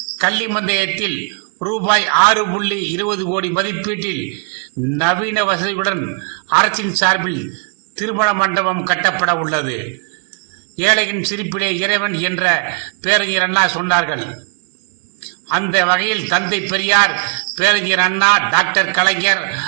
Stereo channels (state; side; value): quieter; left; 39.5 dB